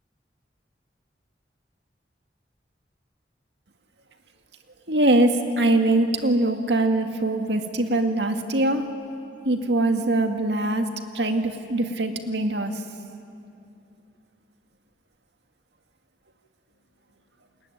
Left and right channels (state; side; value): normal; both; correlation 0.46